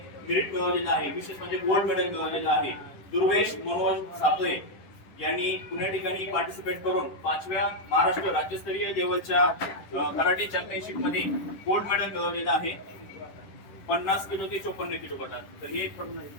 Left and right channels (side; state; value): right; late; 10 ms